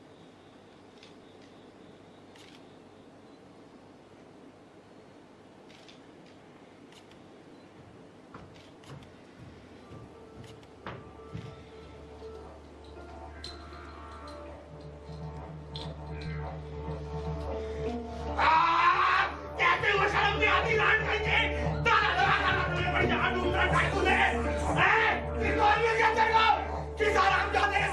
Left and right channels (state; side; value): identical; both; correlation 1.00